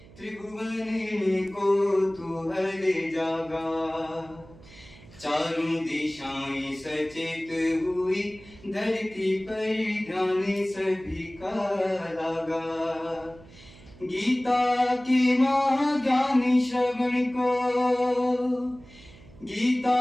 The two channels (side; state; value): right; noise; hum, 22 dB below the sound